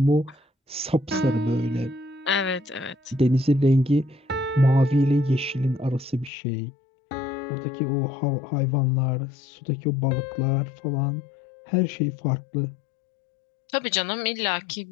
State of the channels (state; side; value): drops out; right; at 6.3 s